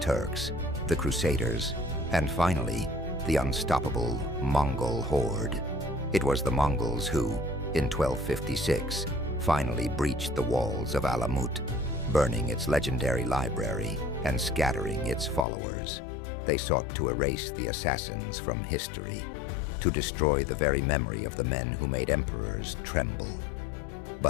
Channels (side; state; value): right; drops out; at 15.5 s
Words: the Crusaders, and finally, the unstoppable Mongol horde. It was the Mongols who, in 1256, finally breached the walls of Alamut, burning its legendary library and scattering its followers. They sought to erase the assassins from history, to destroy the very memory of the men who made emperors tremble.